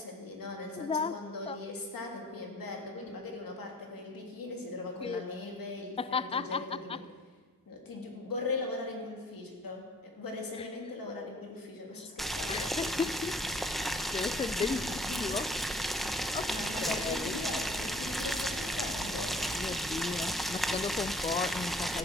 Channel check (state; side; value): normal; both; correlation 0.54